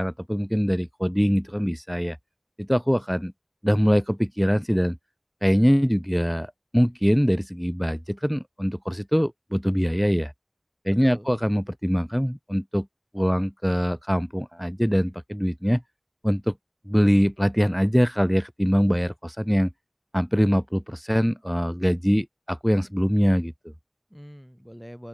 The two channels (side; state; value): both; identical; correlation 1.00